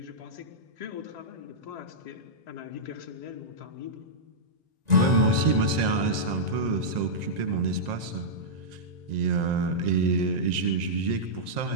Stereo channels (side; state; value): left; late; 1.9 ms